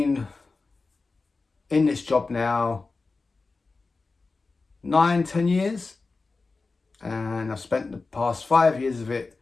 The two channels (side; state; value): right; quieter; 3.9 dB